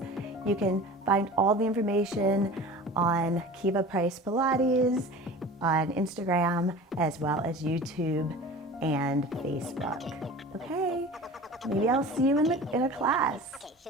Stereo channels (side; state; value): both; normal; correlation 0.38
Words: you can find all the information on Kiva Price Pilates on Instagram as well as YouTube and Facebook. Okay, maybe I'll see you in a class.